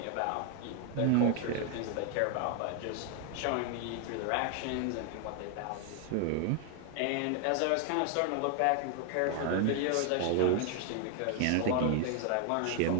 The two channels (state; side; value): different; both; correlation 0.00